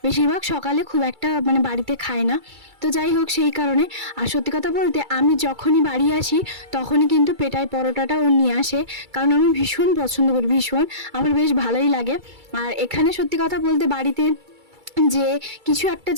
বেশিরভাগ সকালে খুব একটা মানে বাড়িতে খায় না। তো যাই হোক, সেই কারণে। আর সত্যি কথা বলতে আমি যখনই বাড়ি আসি তখনই কিন্তু পেটাই পরোটাটা ও নিয়ে আসে, কারণ আমি ভীষণ পছন্দ করি, ভীষণ আমার বেশ ভালোই লাগে। আর এখানে সত্যি কথা বলতে বাড়িতে যে কিছু একটা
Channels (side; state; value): left; late; 2.3 ms